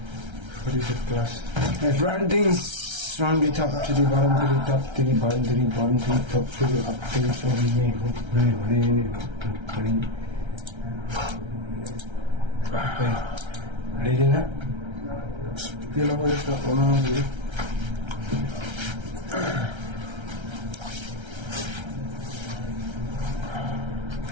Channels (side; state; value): left; late; 1.3 ms